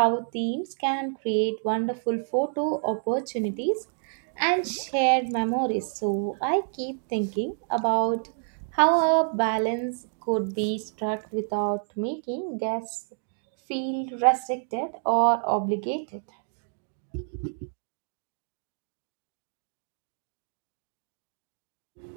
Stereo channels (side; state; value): left; silent; 59 dB below the other